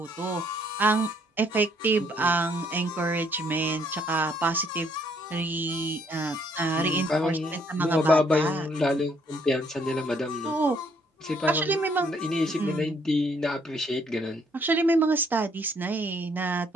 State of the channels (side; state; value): both; normal; correlation 0.67